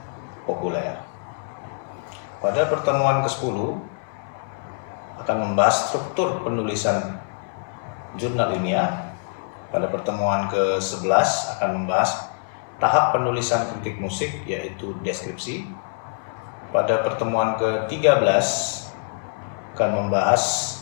populer. Pada pertemuan ke-10 akan membahas struktur penulisan jurnal ilmiah. Pada pertemuan ke-11 akan membahas tahap penulisan kritik musik, yaitu deskripsi. Pada pertemuan ke-13 akan membahas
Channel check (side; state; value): right; silent; 59 dB below the other